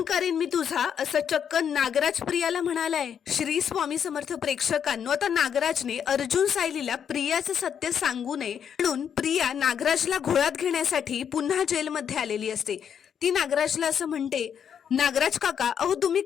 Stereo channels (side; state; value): right; quieter; 8.1 dB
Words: करेन मी तुझा, असं चक्क नागराज प्रियाला म्हणालाय. श्री स्वामी समर्थ प्रेक्षकांनो, आता नागराजने अर्जुन सायलीला प्रियाचं सत्य सांगू नये म्हणून प्रिया नागराजला घोळात घेण्यासाठी पुन्हा जेलमध्ये आलेली असते. ती नागराजला असं म्हणते, नागराज काका, अहो तुम्ही